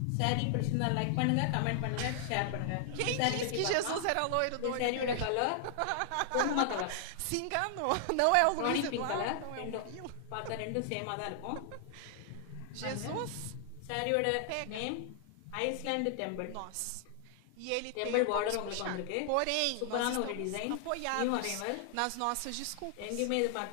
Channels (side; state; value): both; different; correlation 0.00